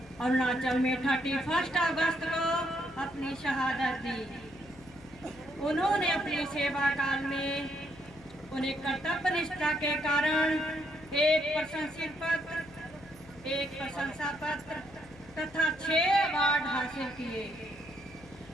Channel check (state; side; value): noise; left; hum, 21 dB below the sound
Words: अरुणाचल में 31 अगस्त को अपनी शहादत दी। उन्होंने अपनी सेवा काल में उन्हें कर्तव्य निष्ठा के कारण एक प्रशंसित पत्र, एक प्रशंसा पत्र तथा 6 अवार्ड हासिल किए।